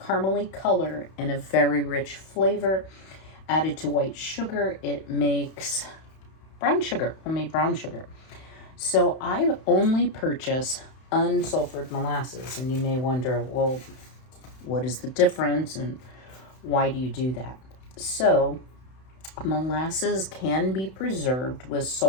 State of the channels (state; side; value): late; right; 31 ms